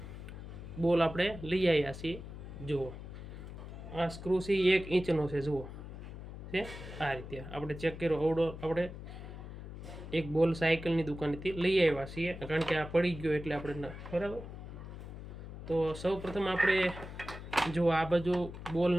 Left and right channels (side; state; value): left; noise; hum, 11 dB below the sound